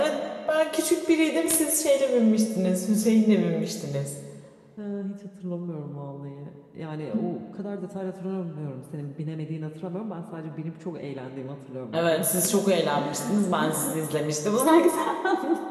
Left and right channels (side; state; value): both; identical; correlation 1.00